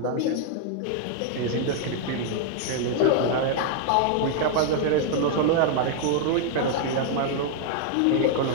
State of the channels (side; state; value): both; different; correlation 0.00